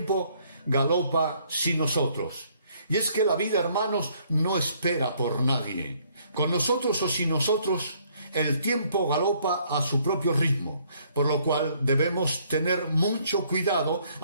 galopa sin nosotros. Y es que la vida, hermanos, no espera por nadie. Con nosotros o sin nosotros, el tiempo galopa a su propio ritmo, por lo cual debemos tener mucho cuidado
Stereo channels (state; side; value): inverted; both; correlation -0.65